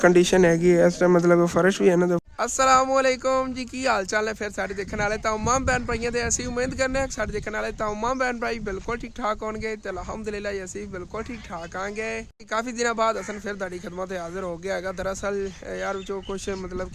कंडीशन हैगी इस टाइम मतलब फर्श भी है ना। तो अस्सलामुअलैकुम जी की हाल चाल है फिर सारे देखने वाले तमाम भैन भाइयों से असी उम्मीद करने हैं सारे देखने वाले तमाम भैन भाई बिल्कुल ठीक ठाक होंगे तो अलहमदुलिल्लाह असी बिल्कुल ठीक ठाक आएंगे। काफ़ी दिनों बाद असन फिर तुहाडी खिदमत हाजिर हो गया है। दरअसल यार जो कुछ मतलब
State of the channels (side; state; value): both; identical; correlation 1.00